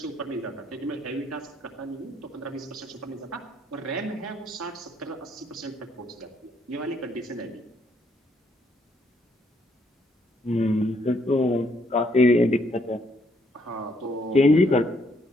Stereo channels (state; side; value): normal; both; correlation 0.70